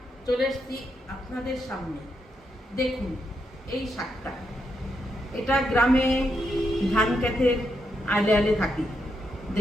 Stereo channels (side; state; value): both; normal; correlation 0.81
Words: চলে এসেছি আপনাদের সামনে। দেখুন এই শাকটা, এটা গ্রামে ধান ক্ষেতের আলে আলে থাকি।